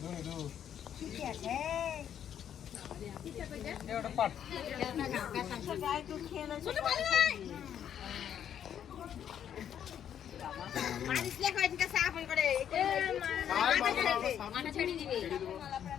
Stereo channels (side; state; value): right; quieter; 9.4 dB